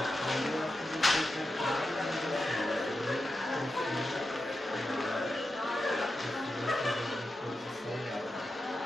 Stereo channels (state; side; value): normal; both; correlation 0.90